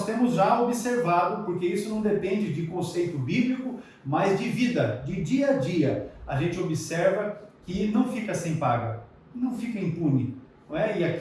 temos já observado, porque isso não depende de conceito bíblico, mas de vida, de dia a dia. A gente observa que não fica sem paga, não fica impune. Não é? E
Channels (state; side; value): identical; both; correlation 1.00